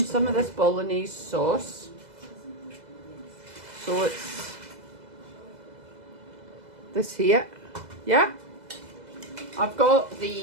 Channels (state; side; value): late; left; 2.0 ms